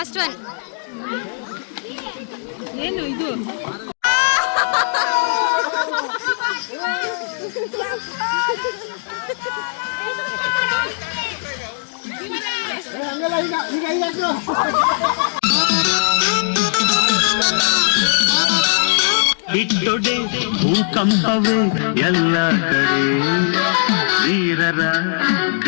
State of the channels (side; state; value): right; silent; digital silence